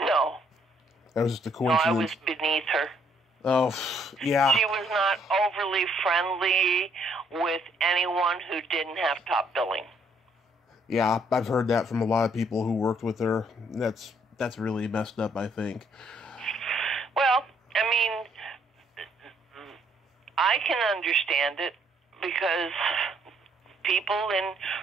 That was just a coincidence. No, I was beneath her. Oh, yeah. She was not overly friendly with anyone who didn't have top billing. Yeah, I've heard that from a lot of people who worked with her. That's really messed up, I think. Well, I mean, I can understand it because people in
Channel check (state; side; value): normal; both; correlation 0.67